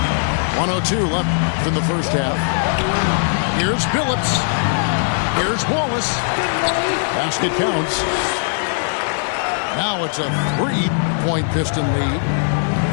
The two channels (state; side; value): silent; right; digital silence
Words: .102 left in the first half. Here's Phillips. Here's Wallace. Basket counts. Now it's a 3-point Piston lead.